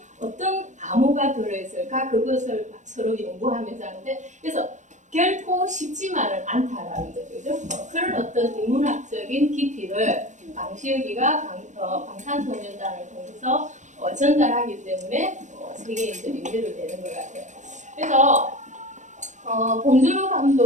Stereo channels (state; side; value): late; left; 0.35 ms